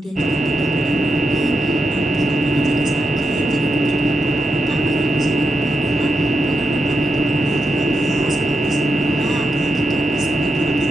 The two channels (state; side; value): normal; both; correlation 0.86